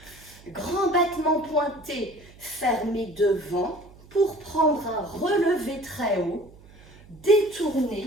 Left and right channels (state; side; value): noise; right; hum, 23 dB below the sound